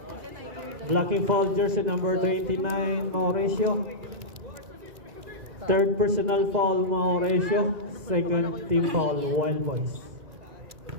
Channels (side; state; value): left; late; 2.1 ms